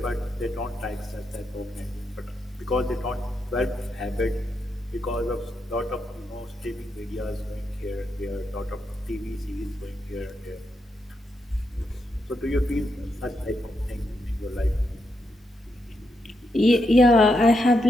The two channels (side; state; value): both; normal; correlation 0.83